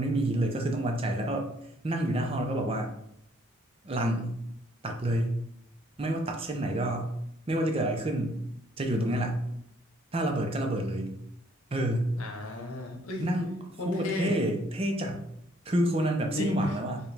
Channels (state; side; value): normal; both; correlation 0.65